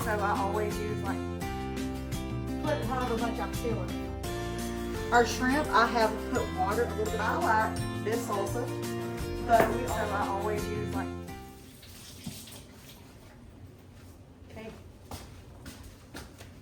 so I always use like, put however much I feel in it. Our shrimp, I have put water a little bit. I like this salsa, but I always use like, okay.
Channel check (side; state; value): both; identical; correlation 1.00